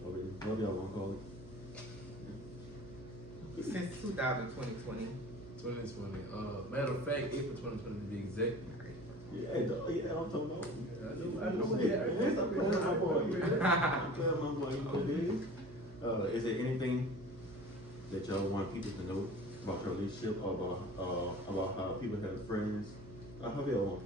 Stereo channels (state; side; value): noise; right; hum, 16 dB below the sound